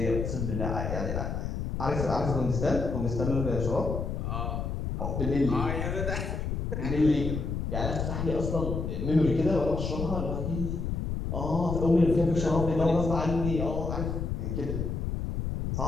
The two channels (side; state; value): left; noise; rumble, 2 dB below the sound